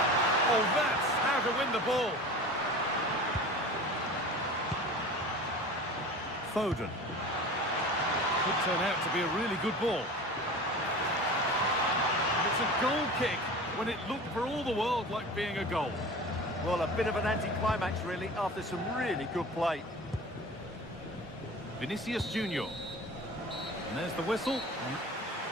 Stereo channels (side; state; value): both; normal; correlation 0.37